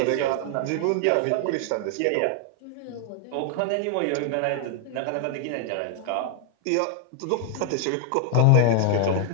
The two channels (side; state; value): both; different; correlation 0.00